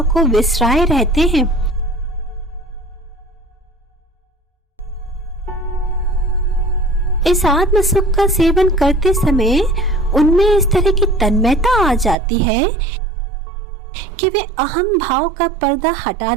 को विसराए रहते हैं। इस आत्म सुख का सेवन करते समय उनमें इस तरह की तन्मयता आ जाती है कि वे अहम भाव का पर्दा हटा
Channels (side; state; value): left; drops out; at 12.2 s